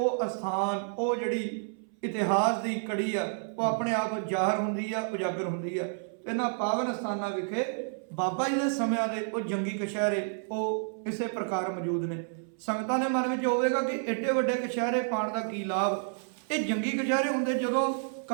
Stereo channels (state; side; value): silent; left; 58 dB below the other